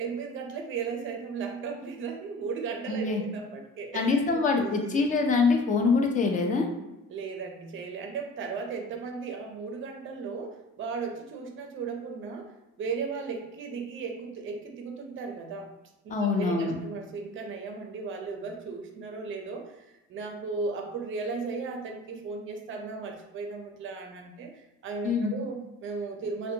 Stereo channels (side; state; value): both; normal; correlation 0.41